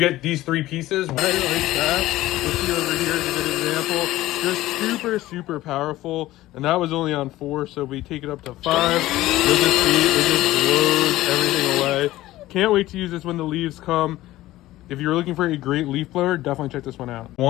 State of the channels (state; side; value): quieter; right; 16.3 dB